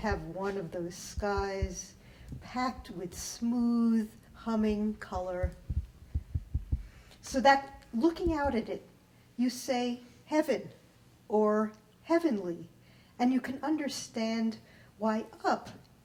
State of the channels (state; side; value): identical; both; correlation 1.00